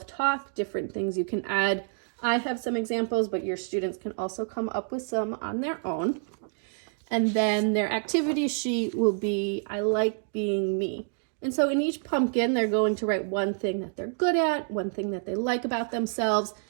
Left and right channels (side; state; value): left; silent; digital silence